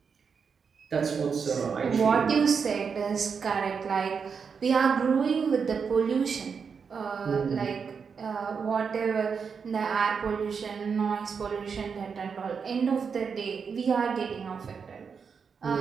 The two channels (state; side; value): quieter; left; 6.0 dB